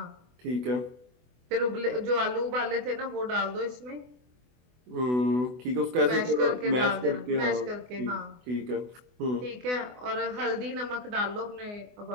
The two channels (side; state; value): left; late; 24 ms